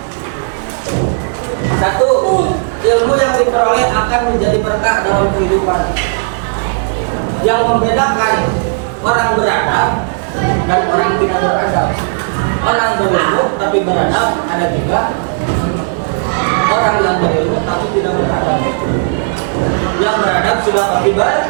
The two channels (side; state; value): left; silent; digital silence